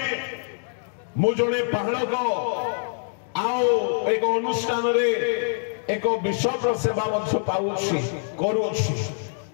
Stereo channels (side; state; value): right; silent; digital silence